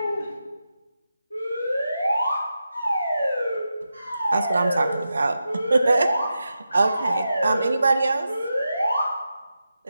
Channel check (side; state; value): both; inverted; correlation -0.90